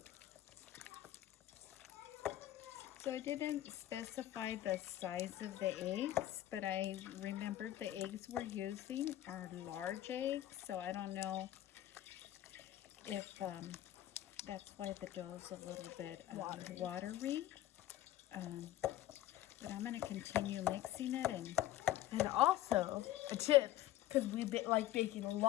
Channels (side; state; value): right; quieter; 13.8 dB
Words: So I didn't specify the size of the eggs, but I remembered the eggs we're using are large eggs, so I don't know if that's why the dough is a little bit watery. But I'm going to continue mixing it. And also, a tip, because we like baking a